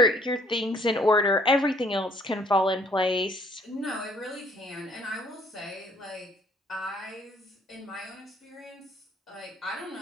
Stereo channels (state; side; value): normal; both; correlation 0.60